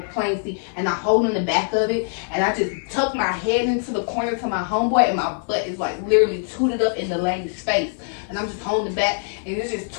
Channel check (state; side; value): silent; right; 61 dB below the other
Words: plane seat. And I'm holding the back of it. And I just tuck my head into the corner to my homeboy. And my butt is like literally tooted up in the lady's face. And I'm just holding the back. And it's just